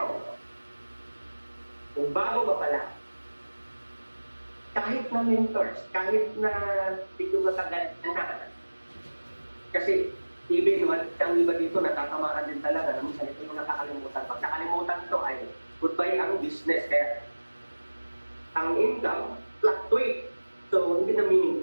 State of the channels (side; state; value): both; inverted; correlation -1.00